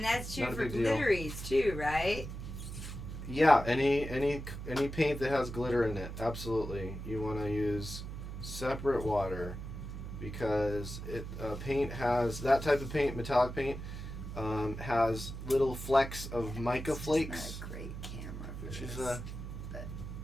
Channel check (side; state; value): right; noise; hum, 8 dB below the sound